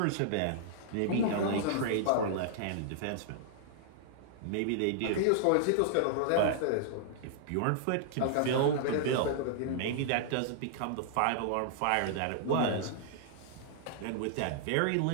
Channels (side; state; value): both; different; correlation -0.01